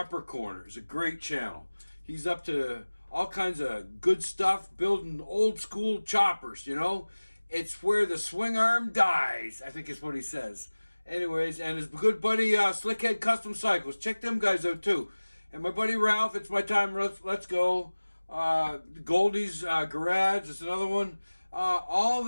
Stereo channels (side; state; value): both; inverted; correlation -1.00